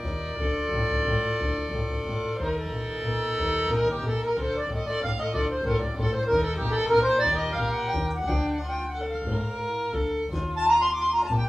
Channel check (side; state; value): both; normal; correlation 0.97